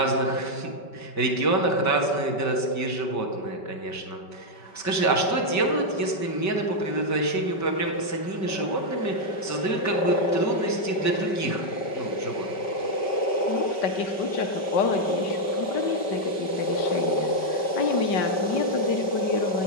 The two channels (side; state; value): right; late; 5.2 ms